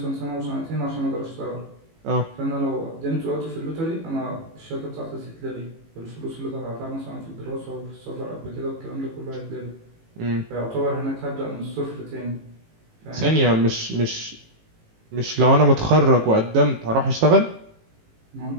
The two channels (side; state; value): left; late; 18 ms